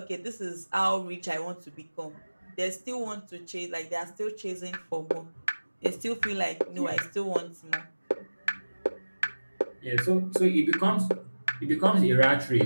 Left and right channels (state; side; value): inverted; both; correlation -1.00